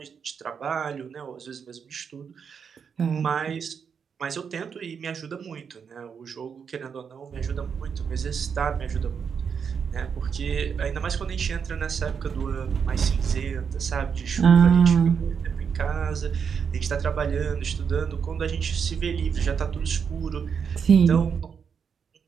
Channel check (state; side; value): quieter; left; 6.7 dB